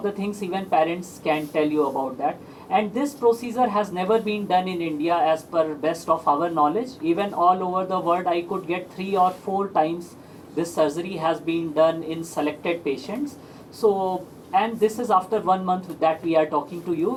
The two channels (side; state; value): both; identical; correlation 1.00